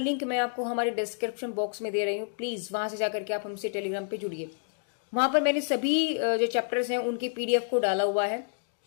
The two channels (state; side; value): silent; right; digital silence